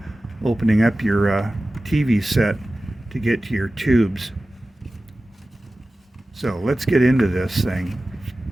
opening up your TV set to get to your tubes. So let's get into this thing.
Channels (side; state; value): both; normal; correlation 0.96